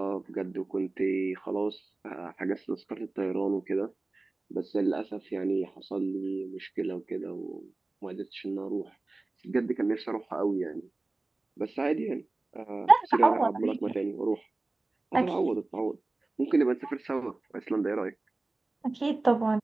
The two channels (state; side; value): quieter; left; 3.1 dB